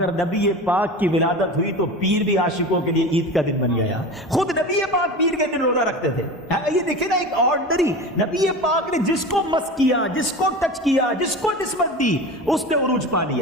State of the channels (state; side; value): normal; both; correlation 0.30